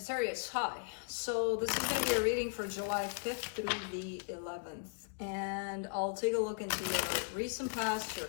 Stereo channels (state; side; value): quieter; right; 39.7 dB